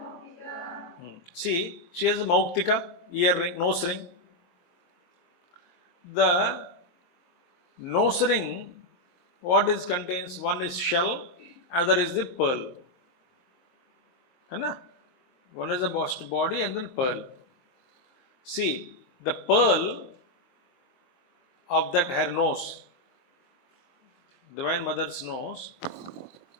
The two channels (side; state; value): right; late; 23 ms